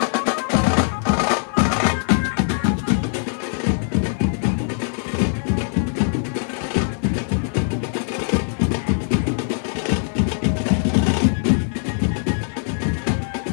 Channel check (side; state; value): right; silent; 57 dB below the other